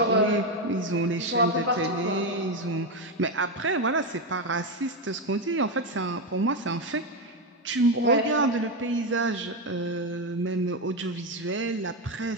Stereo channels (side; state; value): both; normal; correlation 0.09